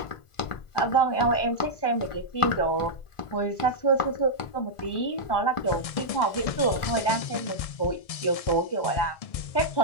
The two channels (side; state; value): right; late; 1.4 ms